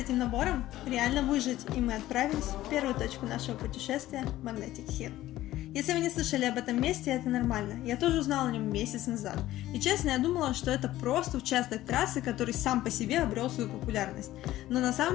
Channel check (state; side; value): quieter; right; 15.1 dB